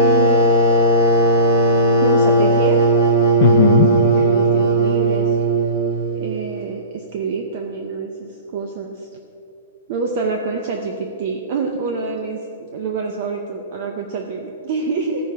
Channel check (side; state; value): both; inverted; correlation -0.35